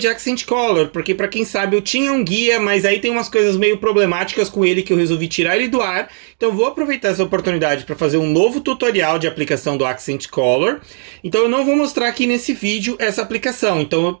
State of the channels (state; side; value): silent; left; 55 dB below the other